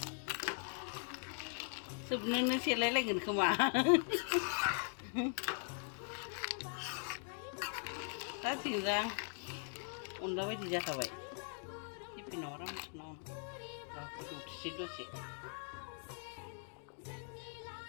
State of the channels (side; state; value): right; silent; 51 dB below the other